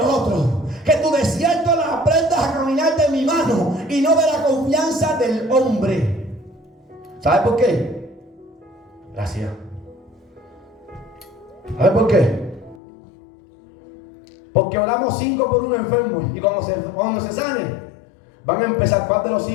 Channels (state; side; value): drops out; right; at 12.8 s